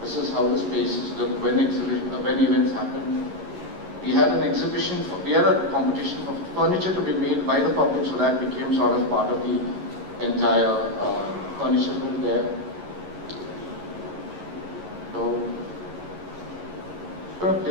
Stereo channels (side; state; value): left; late; 11 ms